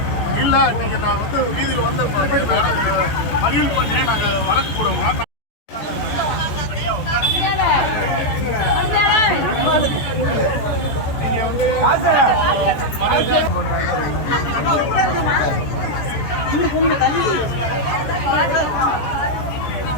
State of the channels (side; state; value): right; late; 14 ms